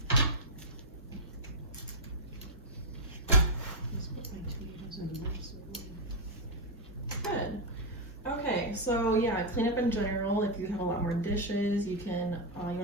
so yeah, cleanup in general. If you have a lot more dishes, you can you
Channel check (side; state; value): both; normal; correlation 0.00